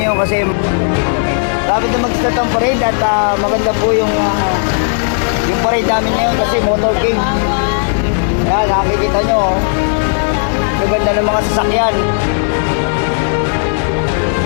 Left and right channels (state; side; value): silent; right; digital silence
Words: kasi dapat na mag-start ang parade at maganda po yung parade namin ngayon kasi motorcade. Ayan, nakikita nyo, maganda ng mga sasakyan.